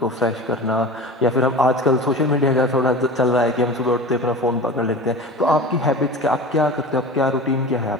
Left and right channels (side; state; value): both; normal; correlation 0.33